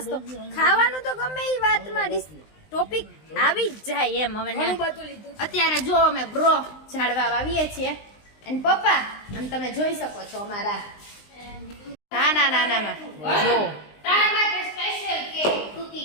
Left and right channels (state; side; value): late; right; 19 ms